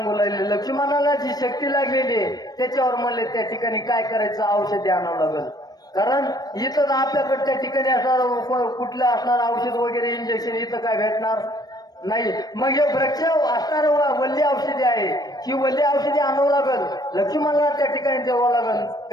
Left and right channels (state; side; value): late; right; 0.19 ms